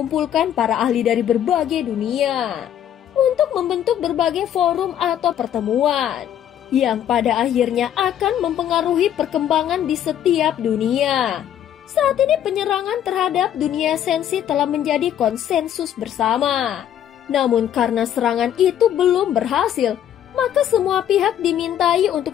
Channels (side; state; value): right; quieter; 10.4 dB